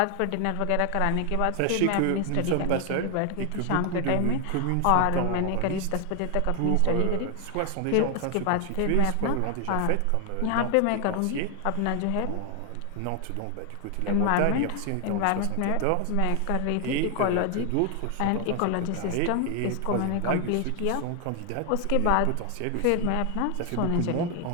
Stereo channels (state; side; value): different; both; correlation 0.00